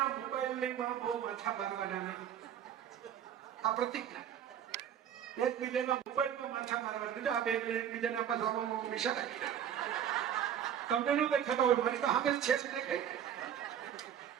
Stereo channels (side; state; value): left; quieter; 9.5 dB